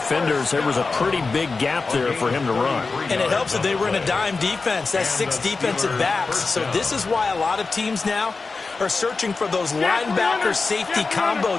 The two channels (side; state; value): right; quieter; 4.1 dB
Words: there was a pretty big gap there for him to run. And it helps that they were in a dime defense. That's 6 defensive backs. So this is why a lot of teams now are searching for those linebacker safety combo